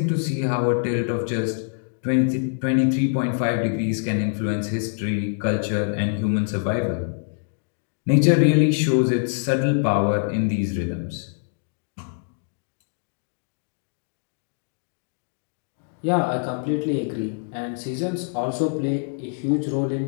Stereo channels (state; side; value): silent; right; digital silence